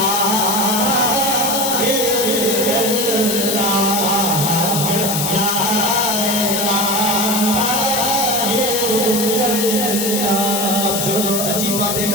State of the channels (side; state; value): left; noise; hiss, 1 dB below the sound